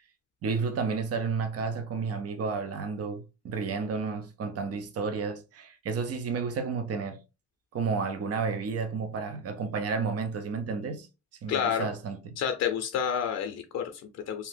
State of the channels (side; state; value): both; normal; correlation 0.12